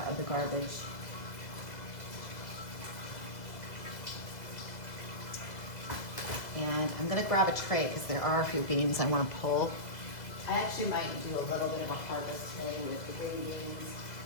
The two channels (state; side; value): late; right; 2.0 ms